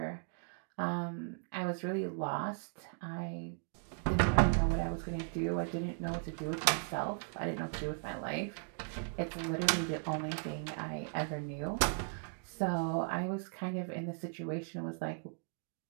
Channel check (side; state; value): left; silent; 53 dB below the other